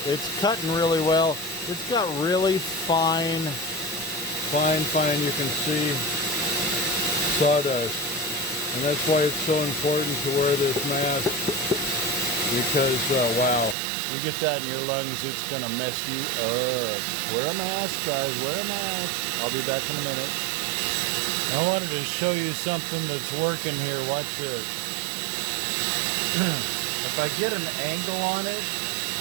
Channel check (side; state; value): left; drops out; at 13.8 s